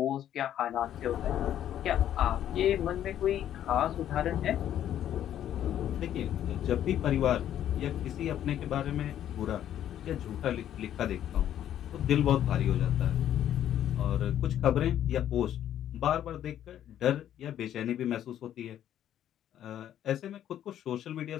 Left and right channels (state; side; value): quieter; right; 11.0 dB